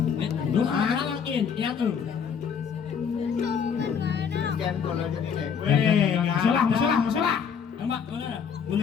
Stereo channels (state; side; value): quieter; right; 6.9 dB